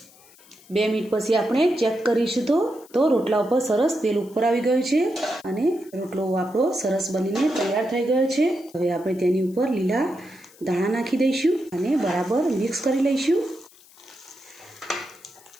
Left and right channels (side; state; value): left; noise; hiss, 25 dB below the sound